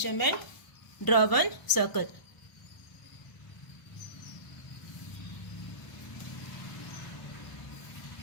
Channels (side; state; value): right; late; 1.0 ms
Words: draw one circle.